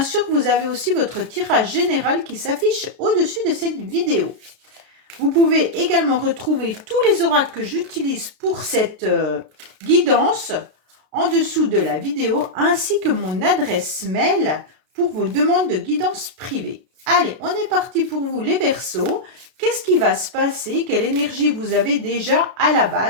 vous avez aussi votre tirage général qui s'affiche au-dessus de cette vidéo. Vous pouvez également retrouver tous les oracles que j'utilise pour cette guidance en dessous de la vidéo, ainsi que mon adresse mail pour vos demandes de guidance privée. Allez, on est parti pour vous les Verseaux. Qu'est-ce qui va se passer? Quelle énergie vous avez déjà à la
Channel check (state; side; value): late; left; 32 ms